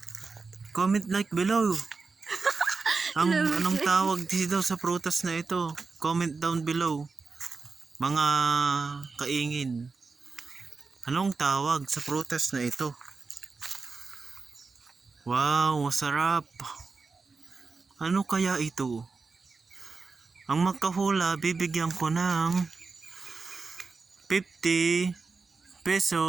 Comment like below. Anong tawag dito sa prutas na ito? Comment down below. Mga kaingin. Anong tawag sa prutas na ito? Wow, masarap. Ano kaya ito? Ang magkahula, bibigyan ko ng 50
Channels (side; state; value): left; quieter; 4.4 dB